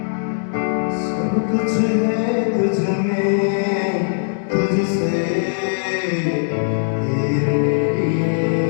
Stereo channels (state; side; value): silent; right; digital silence